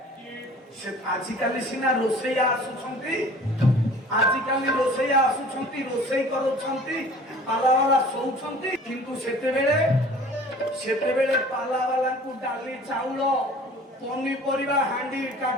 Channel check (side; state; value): both; normal; correlation 0.47